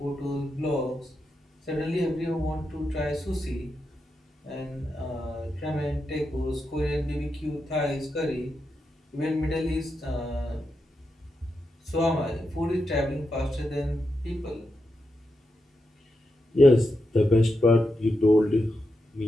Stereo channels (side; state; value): both; normal; correlation 0.86